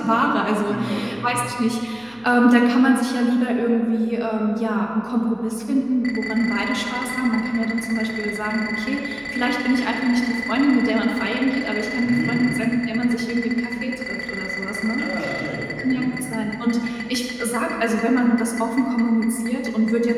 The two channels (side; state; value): right; noise; hum, 29 dB below the sound